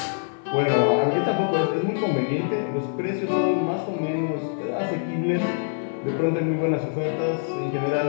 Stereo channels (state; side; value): silent; right; 62 dB below the other